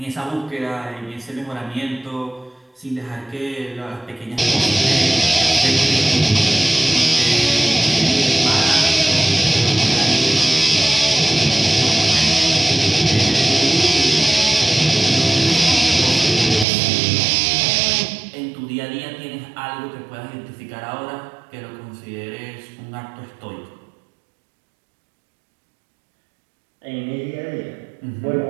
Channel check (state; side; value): drops out; left; at 16.7 s